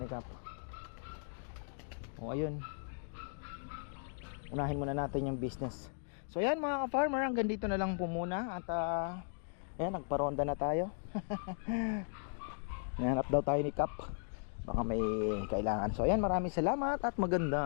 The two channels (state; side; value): silent; right; digital silence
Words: ni Cap? O ayun, unahin muna natin yung business. So ayan mga ka-farmer, hanggang dito na lang po muna. At Ayan, nagparonda na tayo. Nahanap daw tayo ni Kap. Baka may kailangan. So ayan, maraming salamat at